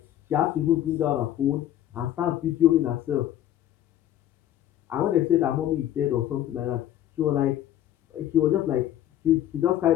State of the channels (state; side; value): quieter; right; 12.1 dB